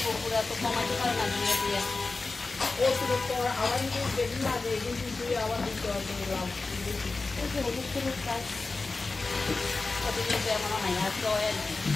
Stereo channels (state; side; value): quieter; right; 3.7 dB